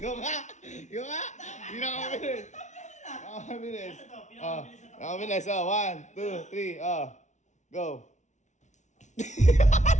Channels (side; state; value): right; late; 0.35 ms